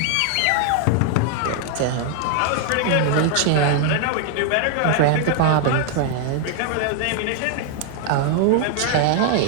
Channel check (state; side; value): different; both; correlation 0.00